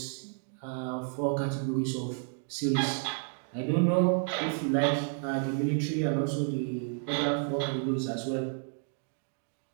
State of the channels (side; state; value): left; silent; 57 dB below the other